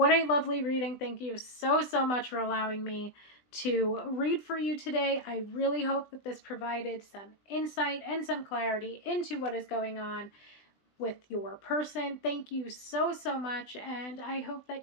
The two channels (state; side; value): late; right; 20 ms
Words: a lovely reading. Thank you so, so much for allowing me to read for you today. I really hope that this provided some insight and some clarity into what is going on with your person. Thank you so, so much, and I hope that